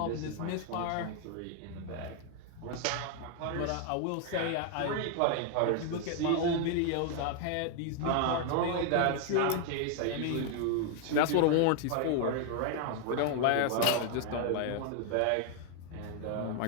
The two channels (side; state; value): both; different; correlation 0.00